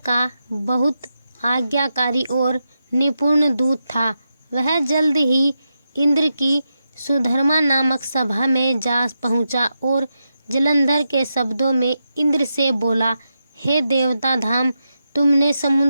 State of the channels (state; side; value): inverted; both; correlation -0.87